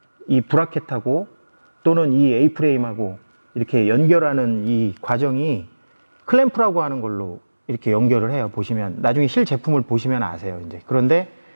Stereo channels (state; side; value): inverted; both; correlation -1.00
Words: 이 브라켓하고 또는 이 A-프레임하고 이렇게 연결하는 이 과정이 클램프라고 하는 걸로 이렇게 연결을 해요. 보시면 나중에 실 제품을 보시면 아세요. 이제 그런데